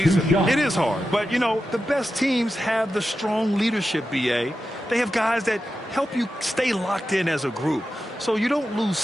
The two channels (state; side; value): normal; both; correlation 0.91